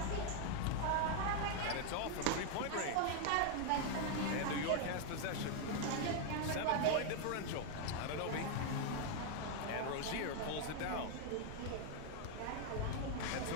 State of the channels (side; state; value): both; different; correlation 0.00